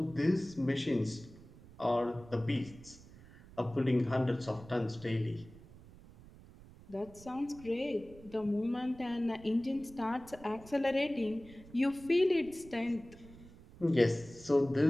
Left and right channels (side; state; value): right; noise; rumble, 20 dB below the sound